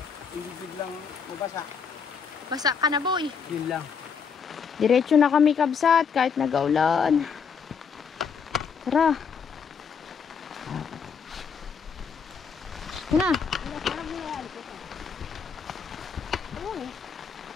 hindi biglang mabasa. Basa ka na, boy. Yun lang. Diretso na kami, kabsat, kahit nag-aulan. Tara. Ito na.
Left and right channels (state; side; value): quieter; right; 6.4 dB